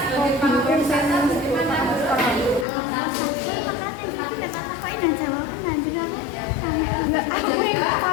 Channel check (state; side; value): drops out; right; at 2.7 s